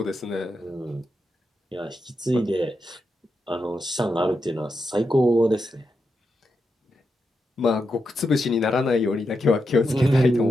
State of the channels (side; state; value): both; normal; correlation 0.86